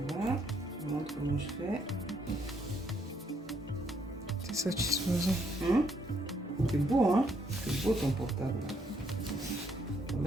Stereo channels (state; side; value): normal; both; correlation 0.72